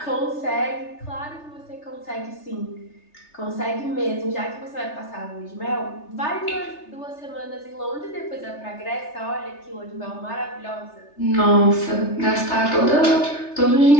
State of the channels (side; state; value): right; late; 3.3 ms